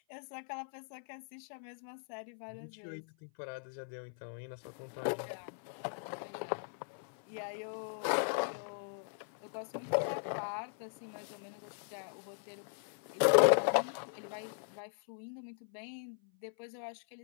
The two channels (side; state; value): right; silent; 52 dB below the other